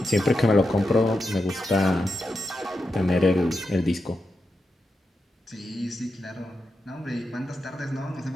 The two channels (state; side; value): normal; both; correlation 0.87